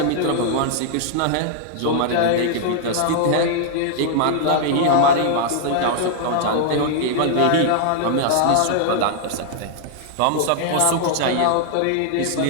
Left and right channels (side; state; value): both; different; correlation -0.01